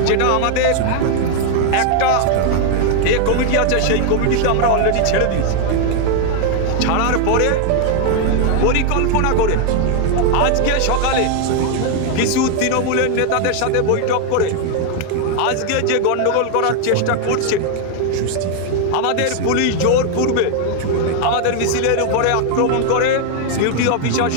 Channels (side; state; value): both; different; correlation 0.00